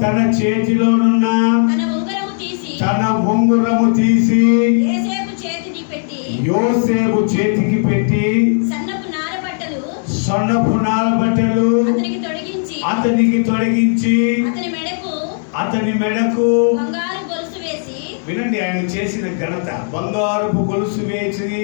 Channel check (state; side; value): silent; right; digital silence